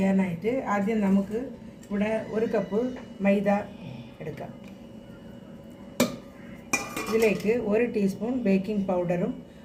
ആദ്യം നമുക്ക് ഇവിടെ 1 കപ്പ് മൈദ എടുക്കാം. ഇതിലേക്ക് 1 ടീസ്പൂൺ ബേക്കിംഗ് പൗഡറും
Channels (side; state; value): both; identical; correlation 1.00